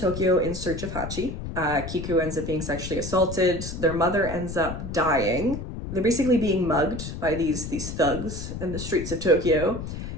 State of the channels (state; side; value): noise; left; rumble, 7 dB below the sound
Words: in search of Hachi. Kiku ends up being sexually assaulted. Their mother ends up dying. They're basically being mugged by these thugs in the streets of Tokyo.